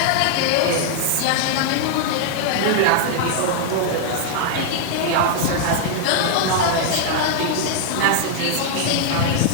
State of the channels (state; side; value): different; both; correlation -0.01